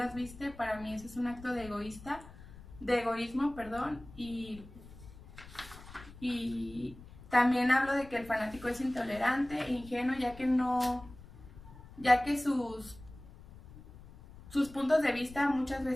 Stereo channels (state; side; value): noise; left; rumble, 18 dB below the sound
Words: viste, para mí eso es un acto de egoísmo, perdón, y también hablo de que el fanático es intolerante e ingenuo, ya que sus puntos de vista muchas